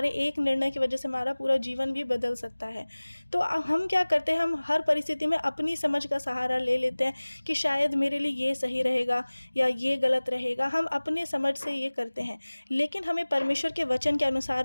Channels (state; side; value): inverted; both; correlation -1.00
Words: एक निर्णय की वजह से हमारा पूरा जीवन भी बदल सकता है। तो हम क्या करते हैं, हम हर परिस्थिति में अपनी समझ का सहारा ले लेते हैं कि शायद मेरे लिए ये सही रहेगा या ये गलत रहेगा, हम अपने समझ से ये करते हैं। लेकिन हमें परमेश्वर के वचन के अनुसार